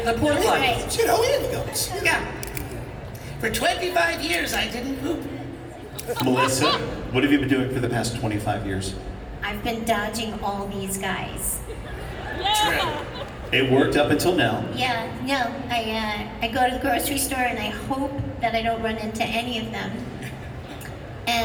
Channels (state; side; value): identical; both; correlation 1.00